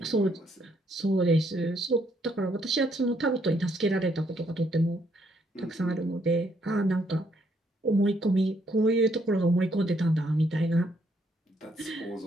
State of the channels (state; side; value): normal; both; correlation 0.71